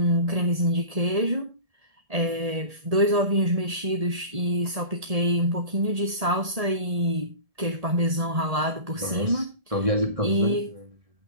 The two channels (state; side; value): late; left; 1.7 ms